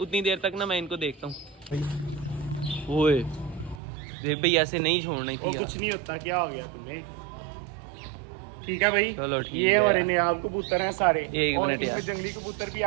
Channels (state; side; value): drops out; left; at 3.8 s